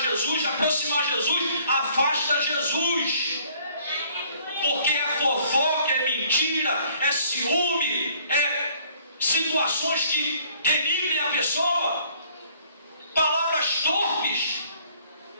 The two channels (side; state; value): both; inverted; correlation -0.59